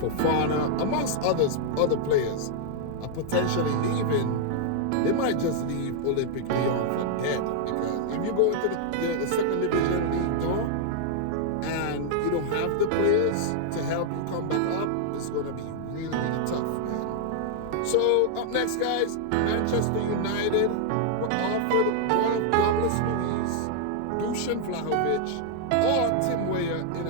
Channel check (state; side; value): different; both; correlation -0.01